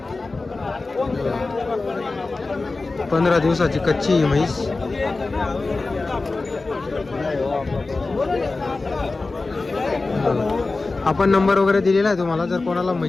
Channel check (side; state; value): right; quieter; 3.6 dB